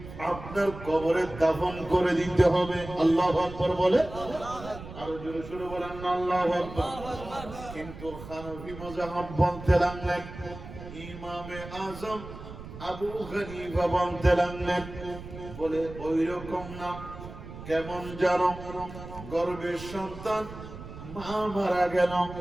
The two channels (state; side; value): noise; right; rumble, 13 dB below the sound